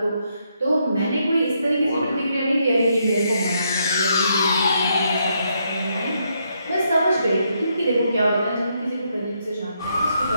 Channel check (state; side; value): inverted; both; correlation -0.77